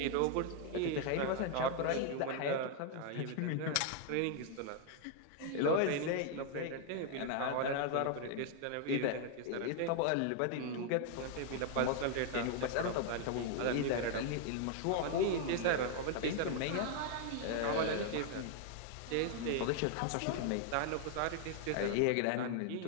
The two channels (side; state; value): both; different; correlation 0.00